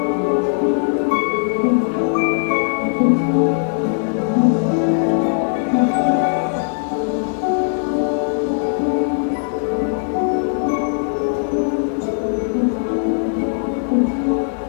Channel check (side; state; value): right; silent; 66 dB below the other